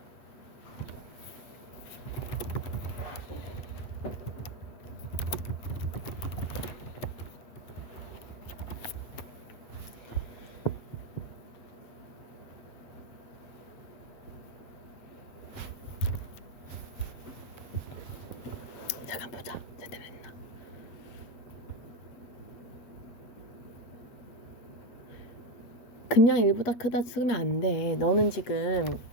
잠깐 보자. 제대로 했나? 그냥 1보다 크다 쓰면 안 돼. 너는 지금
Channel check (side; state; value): right; late; 8.1 ms